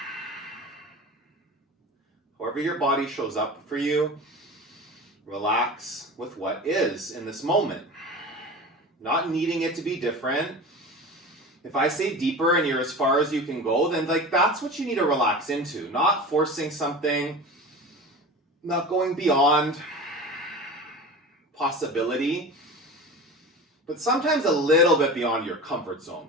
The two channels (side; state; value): both; normal; correlation 0.33